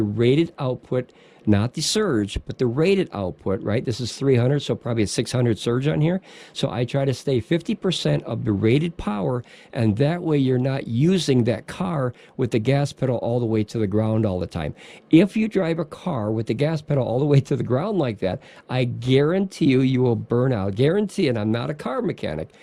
rated output, not the surge, but the rated output, right? This is 300, so probably a 600 surge on here. So I try to stay 50% of the rated power, and that way you're not using that car with the gas pedal all the way to the ground all the time. If you drive a car with the gas pedal all the way to the ground like that, I guarantee you will burn out. Guarantee, and I'm not a car mechanic,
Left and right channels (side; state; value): both; identical; correlation 1.00